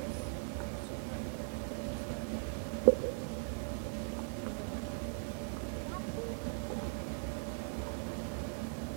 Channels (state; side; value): silent; left; digital silence